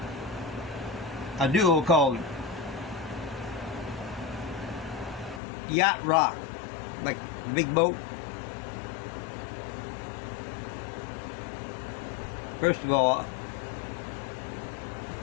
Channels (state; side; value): drops out; right; at 5.4 s